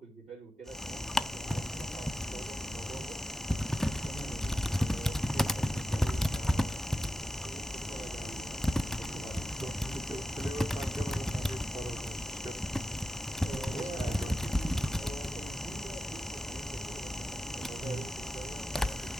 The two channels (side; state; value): both; normal; correlation 0.90